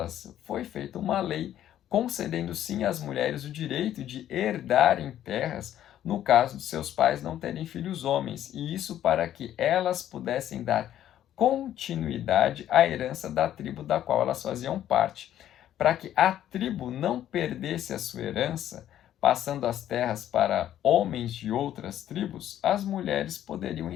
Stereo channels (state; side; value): quieter; right; 11.6 dB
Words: foi feita uma lei concedendo sim às mulheres o direito de herdarem terras no caso de seus pais não terem filhos homens, e isso para que elas pudessem dar continuidade à herança da tribo da qual elas faziam parte. Para que a tribo não perdesse a sua herança, passando as terras para homens de outras tribos, as mulheres poderiam